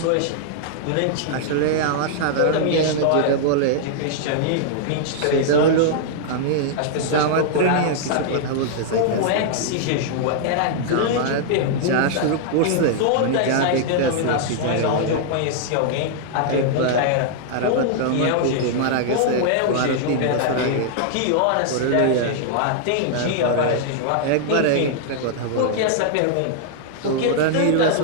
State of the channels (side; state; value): both; different; correlation -0.01